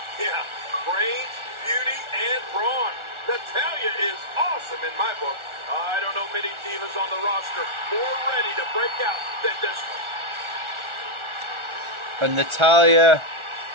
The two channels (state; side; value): late; left; 1.4 ms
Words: Yeah, brains, beauty, and brawn. Natalya is awesome in my book. I don't know many divas on the roster more ready to break out than this one. And Natalya